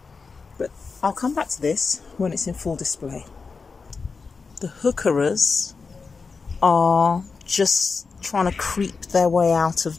But I'll come back to this when it's in full display. The heucheras are just trying to creep their way out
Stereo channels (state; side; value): quieter; right; 4.7 dB